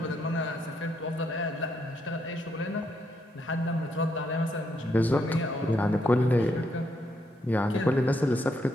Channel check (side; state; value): both; normal; correlation 0.77